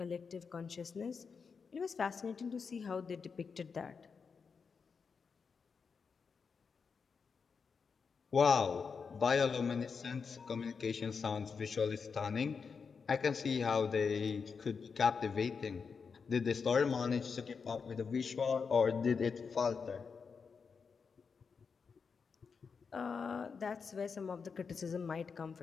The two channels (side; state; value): right; quieter; 5.6 dB